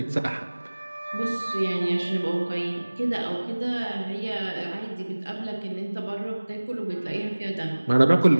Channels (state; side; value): inverted; both; correlation -1.00